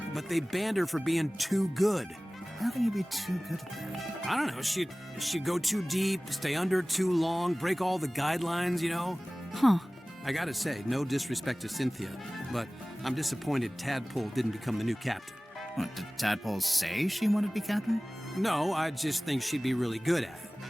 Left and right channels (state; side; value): normal; both; correlation 0.98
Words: but they banned her for being too good. How can you be too good at that? I don't know. She'd go too deep, stay under too long, break all the guidelines, you know? Huh. I gotta say, no disrespect to Cynthia, but I'm disappointed Tadpole didn't become the new captain. What, did Tadpole say she wanted to be captain? No, I just think she'd be really good at it.